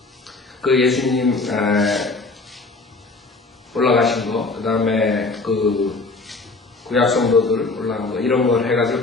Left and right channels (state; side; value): quieter; right; 3.6 dB